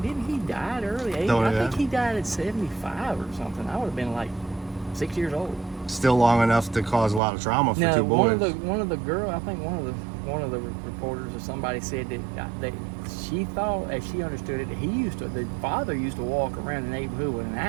didn't he die at early age? I think he died at 75 or something. I would have been like 6 years old. Still long enough to cause a lot of trauma for two boys. One of the girl, I think one of the reporters or somebody said that she thought, as she understood it, that the father used to walk around the neighborhood with an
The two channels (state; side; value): drops out; left; at 7.2 s